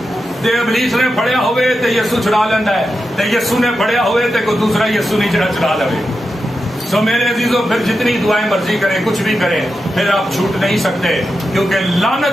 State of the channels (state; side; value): normal; both; correlation 0.89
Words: تو ابلیس نے پڑیا ہوئے تو یسوع چھڑا لینا ہے, تو یسوع نے پڑیا ہوئے تو کوئی دوسرا یسوع نہیں چھڑا لے. سو میرے عزیزوں پھر جتنی دعائیں مرضی کریں, کچھ بھی کریں, پھر آپ چھوٹ نہیں سکتے, کیونکہ